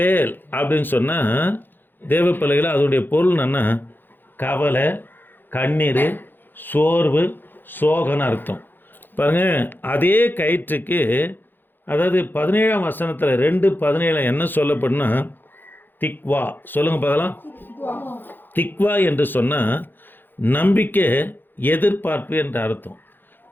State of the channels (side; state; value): right; late; 0.094 ms